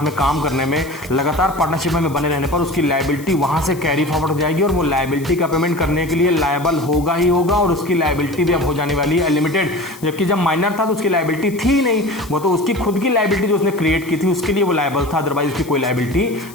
में काम करने में, लगातार पार्टनरशिप में बने रहने पर उसकी लायबिलिटी वहां से कैरी फॉरवर्ड हो जाएगी और वो लायबिलिटी का पेमेंट करने के लिए लायबल होगा ही होगा और उसकी लायबिलिटी भी अब हो जाने वाली है लिमिटेड। जबकि जब माइनर था तो उसकी लायबिलिटी थी ही नहीं, वो तो उसकी खुद की लायबिलिटी जो उसने क्रिएट की थी उसके लिए वो लायबल था, अदरवाइज उसकी कोई लायबिलिटी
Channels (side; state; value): left; noise; hiss, 20 dB below the sound